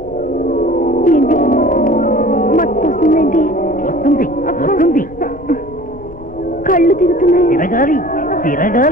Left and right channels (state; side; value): noise; left; rumble, 19 dB below the sound